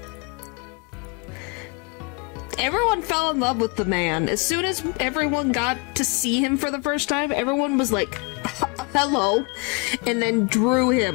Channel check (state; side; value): quieter; right; 31.9 dB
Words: Everyone fell in love with the man. As soon as everyone got to see him for the first time, everyone was like, hello, and then drew